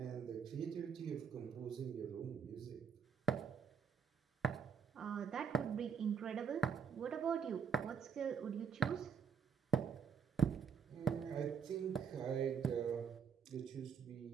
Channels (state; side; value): quieter; left; 6.6 dB